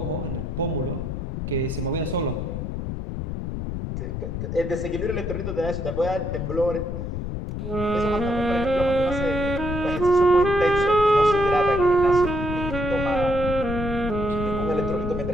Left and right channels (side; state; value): left; noise; rumble, 5 dB below the sound